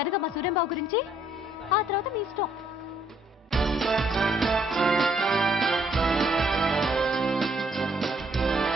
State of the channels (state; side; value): normal; both; correlation 0.67